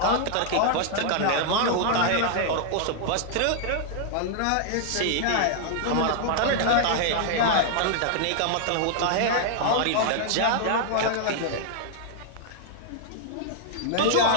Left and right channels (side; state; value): both; different; correlation 0.00